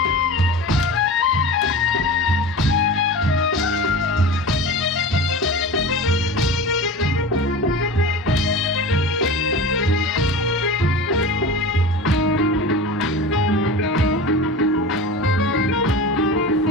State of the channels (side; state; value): both; normal; correlation 0.32